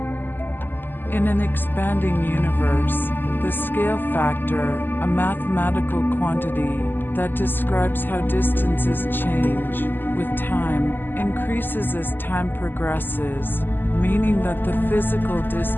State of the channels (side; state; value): right; late; 0.092 ms